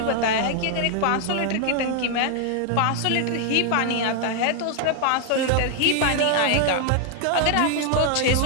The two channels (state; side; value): different; both; correlation 0.00